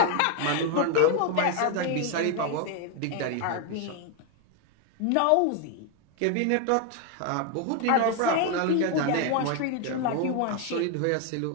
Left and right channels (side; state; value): both; different; correlation 0.01